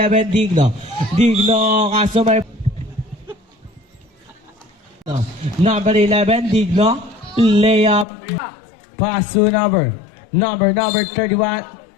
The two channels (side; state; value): right; drops out; at 8.1 s